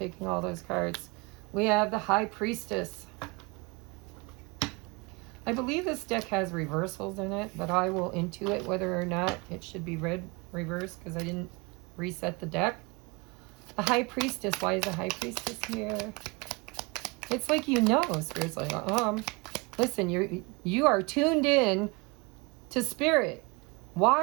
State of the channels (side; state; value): left; quieter; 28.1 dB